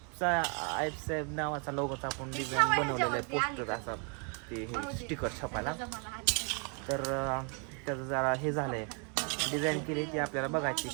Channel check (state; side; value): quieter; left; 37.2 dB